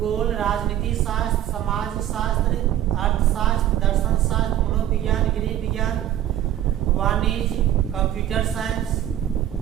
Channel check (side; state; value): left; quieter; 12.0 dB